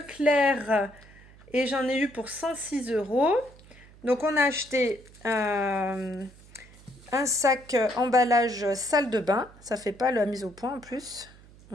et j'en ai eu pour 106 €. Donc on a acheté un sac emballage salle de bain. Ça fait pas la mise au point en plus.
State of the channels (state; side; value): noise; right; hum, 23 dB below the sound